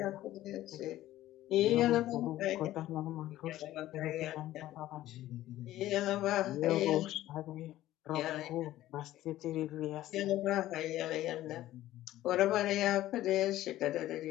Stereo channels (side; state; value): right; quieter; 14.6 dB